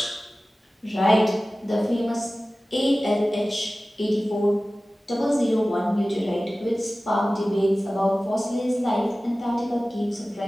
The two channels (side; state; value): both; normal; correlation 0.97